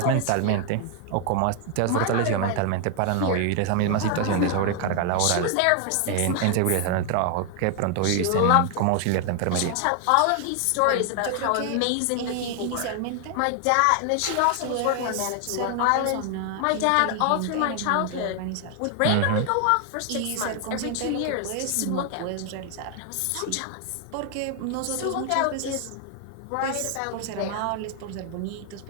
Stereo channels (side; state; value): both; different; correlation 0.00